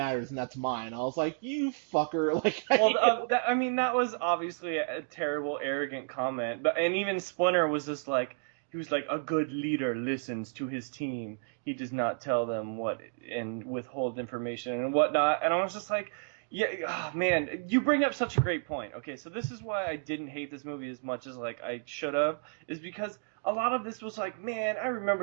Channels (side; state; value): left; silent; digital silence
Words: and that's mine. I was like, you fucker, like Well, I mean, that was obviously a terrible, arrogant comment. But and even Splinter was just like, he was like, a good leader listens to his team. He does not tell them what and withhold information and whatnot. And I was just like, yeah, oh, man, you bring up such a great point. Okay, so this is why I didn't hate this movie as much as like I should have, is because a lot of this was like, man, I